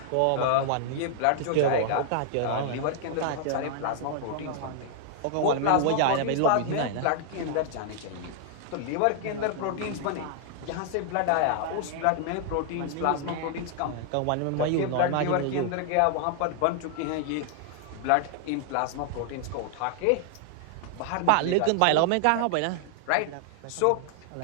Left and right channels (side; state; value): both; different; correlation 0.00